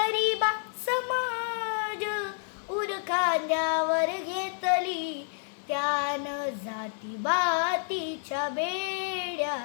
समाज, उर खांद्यावर घेतली त्यानं. जाती बातीच्या बेड्या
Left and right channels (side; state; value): right; silent; 58 dB below the other